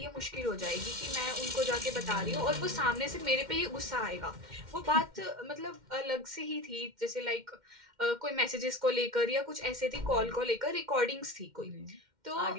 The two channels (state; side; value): late; left; 2.1 ms